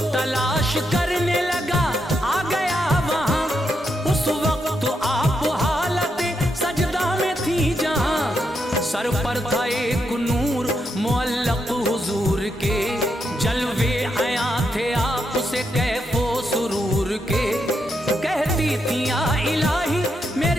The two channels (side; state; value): both; normal; correlation 0.82